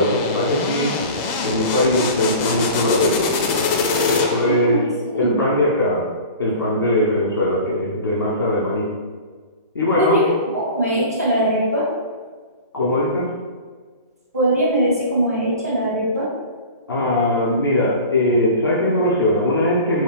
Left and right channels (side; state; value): both; inverted; correlation -0.38